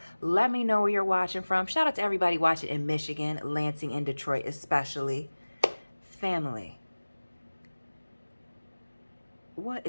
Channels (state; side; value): inverted; both; correlation -1.00